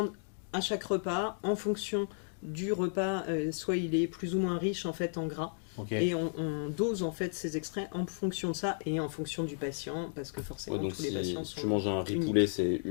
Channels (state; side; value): silent; right; digital silence